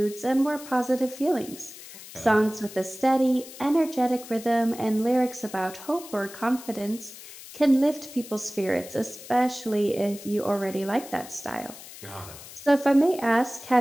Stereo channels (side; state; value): left; noise; hiss, 16 dB below the sound